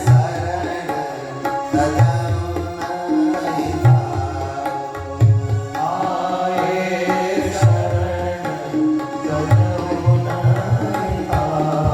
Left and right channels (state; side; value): identical; both; correlation 1.00